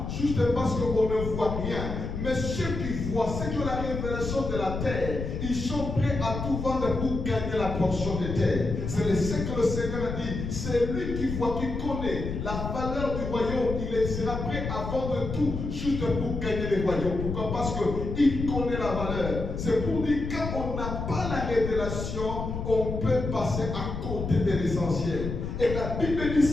juste parce qu'on ne voit rien. Mais ceux qui voient, ceux qui ont la révélation de la terre, ils sont prêts à tout vendre pour gagner la portion de terre. C'est ce que le Seigneur a dit. C'est lui qui voit, qui connaît la valeur du royaume. Il sera prêt à vendre tout juste pour gagner le royaume. Pourquoi? Parce qu'il connaît la valeur. C'est pour dire quand on n'a pas la révélation, on peut passer à côté de l'essentiel. Et la Bible dit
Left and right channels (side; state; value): left; noise; rumble, 5 dB below the sound